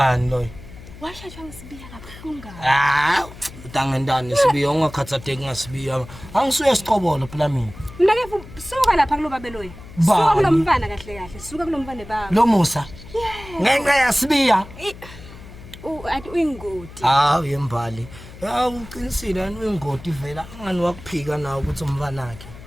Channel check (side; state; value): left; noise; hum, 17 dB below the sound